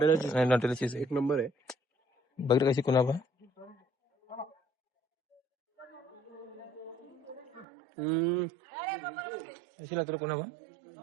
चीज एक नंबर आहे. बघितलं कशी कुनापा. कशी लागते रे कुनापा.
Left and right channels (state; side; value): drops out; left; at 7.7 s